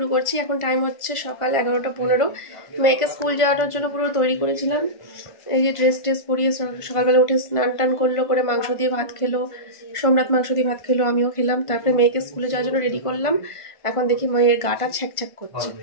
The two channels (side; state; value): right; late; 1.5 ms